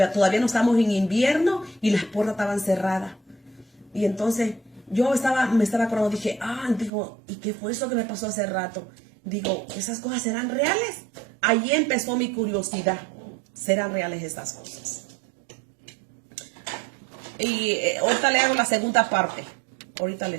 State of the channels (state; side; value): drops out; left; at 6.9 s